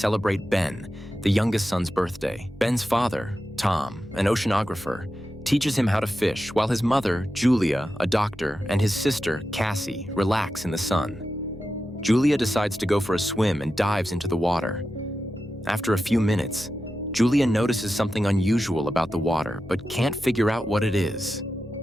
Ben, the youngest son's birthday. Ben's father, Tom, an oceanographer, teaches him how to fish, while his mother, Julia, a doctor, and his sister, Cassie, relax in the sun. Julia decides to go for a swim and dives into the water. After a few minutes, Julia notices something unusual about the water, but can't figure out what it is.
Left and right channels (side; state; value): both; normal; correlation 0.91